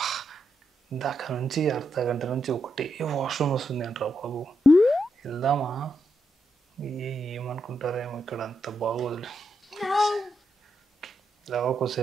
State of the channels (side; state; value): both; normal; correlation 0.83